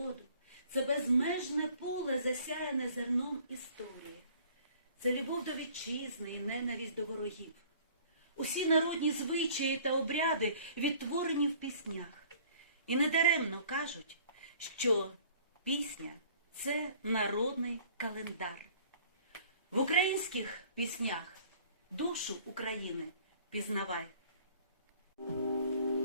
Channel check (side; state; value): both; inverted; correlation -0.53